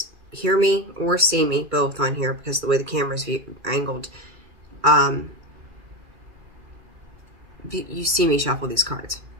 hear me or see me both on here because of the way the camera's angled. You see me shuffle these cards.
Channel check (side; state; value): left; late; 2.3 ms